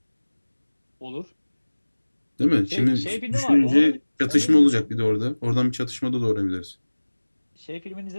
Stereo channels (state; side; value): inverted; both; correlation -1.00